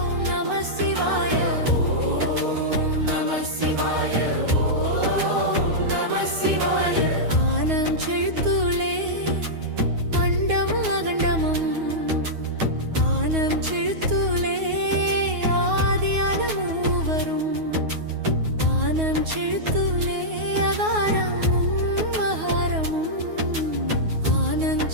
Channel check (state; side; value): late; left; 9.4 ms